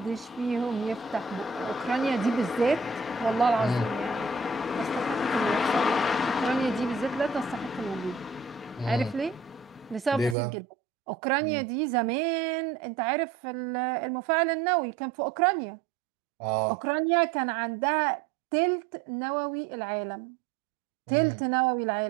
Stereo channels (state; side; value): drops out; left; at 10.4 s